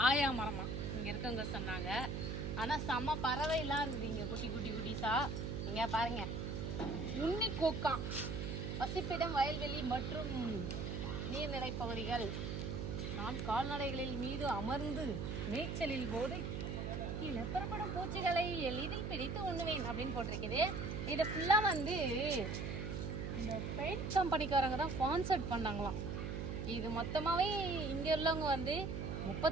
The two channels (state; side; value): noise; right; hum, 3 dB below the sound